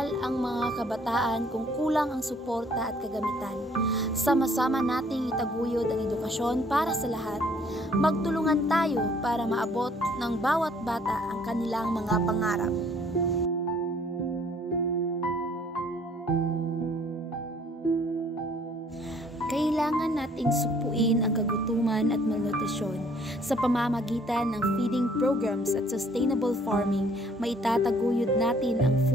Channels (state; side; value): normal; both; correlation 0.60